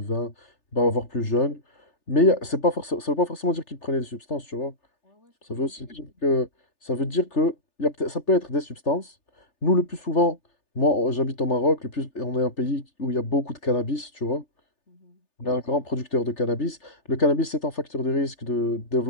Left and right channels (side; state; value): right; late; 3.4 ms